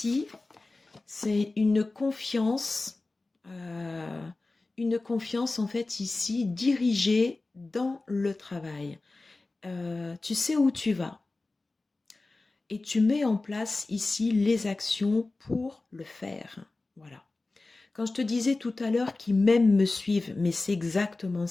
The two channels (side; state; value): right; quieter; 3.3 dB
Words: c'est une confiance en fait ici dirigée dans le travail. Tu sais où tu vas et tu mets en place ici les actions pour le faire. Voilà. Quand je te disais tout à l'heure qu'ils même me suivent, mais c'est exactement